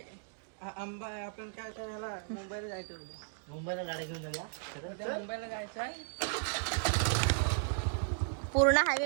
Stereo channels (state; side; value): silent; left; digital silence